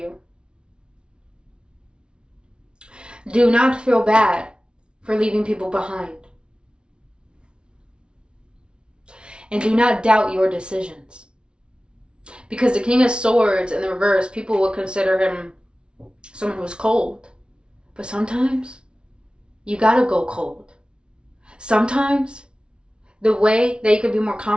Do not feel bad for leaving people behind. And do not doubt your decisions. Because the King of Swords in the reverse, people will consider him someone who's cold. But sometimes you gotta go cold. Sometimes the way that you can be more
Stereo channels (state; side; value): late; left; 0.056 ms